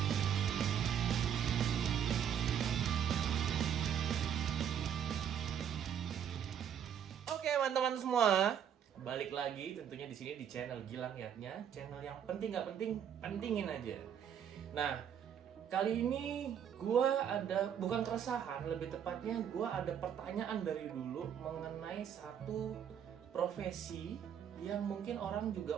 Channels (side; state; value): left; quieter; 8.7 dB